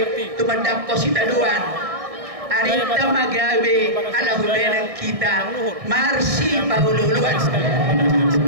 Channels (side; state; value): left; late; 1.6 ms